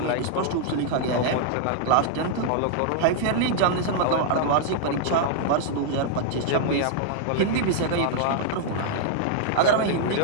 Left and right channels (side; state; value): both; different; correlation -0.01